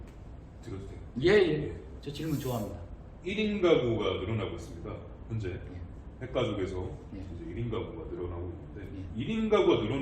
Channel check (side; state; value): both; identical; correlation 1.00